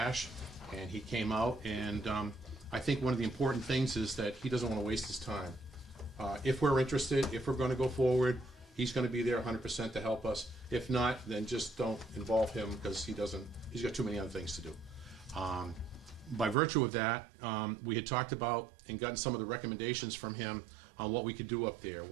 and he came out, and I think one of the important things is that he doesn't want to waste his time. If we're interested, if we're going to go forward, he's going to be there 100% to help us. If not, then just don't involve him, because he's got too many other things to do. By virtue of that, we had talked about and gotten some of the recommendations from him on what we could do up there,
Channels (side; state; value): left; drops out; at 16.6 s